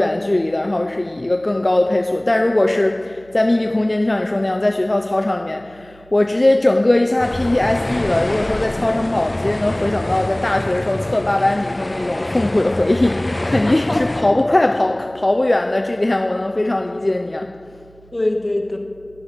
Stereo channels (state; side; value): noise; right; hum, 27 dB below the sound